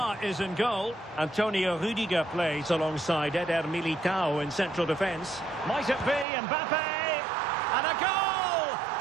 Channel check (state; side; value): drops out; left; at 6.2 s